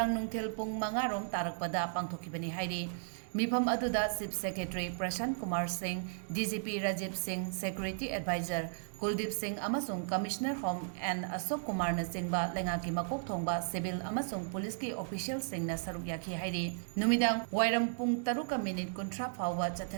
nungthil pung mangarom tarakpada pangthokibani hairi Meefam aduda Chief Secretary Prashant Kumar Singh, DGP Rajiv Singh, Security Advisor Kuldeep Singh amasung Commissioner Home and Ashok Kumar na singba lengaki makok thongba civil amasung police ki official sing na saruk yaki hairi numidang wairam pung taruka minute kontra phawwa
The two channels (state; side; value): silent; left; digital silence